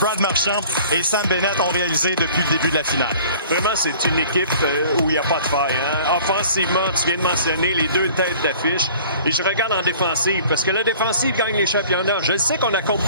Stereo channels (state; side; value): inverted; both; correlation -0.49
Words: Marchand et Sam Bennett ont réalisé depuis le début de la finale. Vraiment, c'est une équipe où il n'y a pas de faille. Hein? Offensivement, tu viens de mentionner les deux têtes d'affiche. Et je regarde en défensive, parce que la défensive gagne les championnats. Je sais qu'on accorde